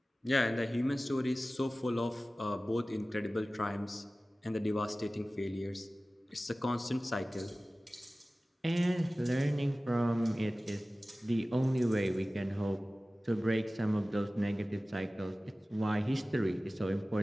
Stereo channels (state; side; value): normal; both; correlation 0.97